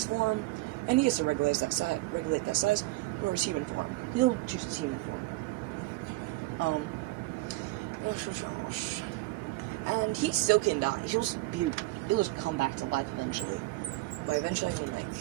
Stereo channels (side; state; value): left; quieter; 19.9 dB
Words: form, and he gets to regulate that size, or his human form. He'll choose his human form. And he still can die. He'll just come back to life eventually. By eventually, I mean, like,